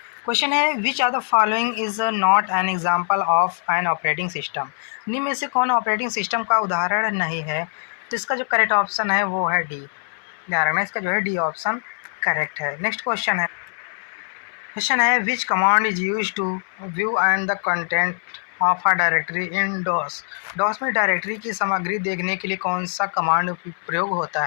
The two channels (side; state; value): right; silent; 62 dB below the other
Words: क्वेश्चन है which of the following is not an example of an operating system. निम्न में से कौन ऑपरेटिंग सिस्टम का उदाहरण नहीं है? तो इसका जो करेक्ट ऑप्शन है वो है डी। ध्यान रखना, इसका जो है डी ऑप्शन करेक्ट है। नेक्स्ट क्वेश्चन है, क्वेश्चन है which command is use to view and the content of a directory in DOS. DOS में डायरेक्टरी की सामग्री देखने के लिए कौन सा कमांड प्रयोग होता